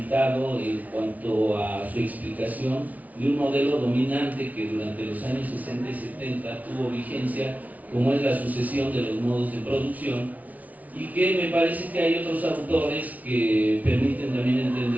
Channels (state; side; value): late; left; 0.072 ms